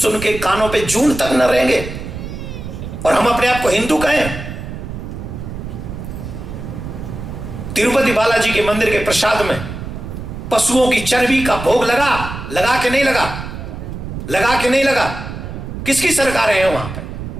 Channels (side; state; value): right; noise; rumble, 8 dB below the sound